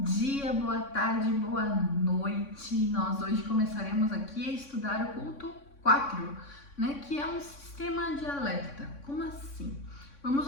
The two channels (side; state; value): right; late; 3.6 ms